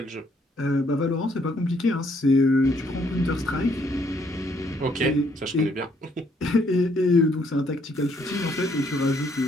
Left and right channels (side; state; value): both; normal; correlation 0.68